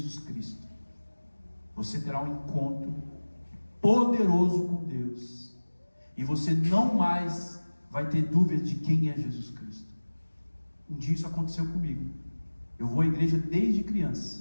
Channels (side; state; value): both; inverted; correlation -1.00